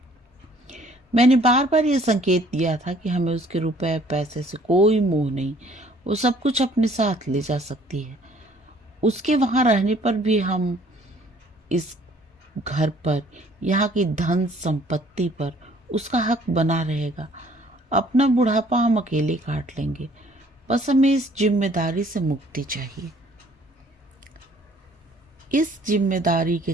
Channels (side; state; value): both; normal; correlation 0.58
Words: मैंने बार बार यह संकेत दिया था कि हमें उसके रुपए पैसे से कोई मोह नहीं, वो सब कुछ अपने साथ ले जा सकती है। उसके वहां रहने पर भी हम इस घर पर, यहाँ की धन संपत्ति पर उसका हक बना रहेगा। अपना बुढ़ापा हम अकेले काट लेंगे। बस हमें इस जिम्मेदारी से मुक्ति चाहिए। इस जिम्मेदारी के